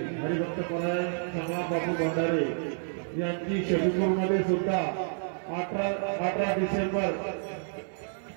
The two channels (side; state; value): left; silent; 58 dB below the other